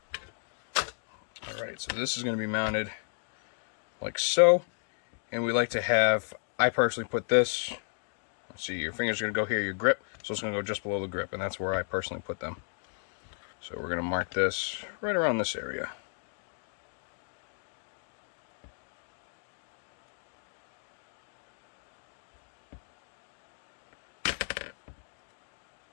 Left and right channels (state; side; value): silent; right; digital silence